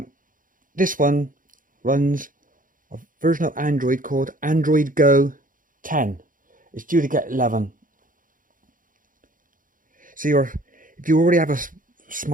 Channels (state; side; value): late; left; 0.39 ms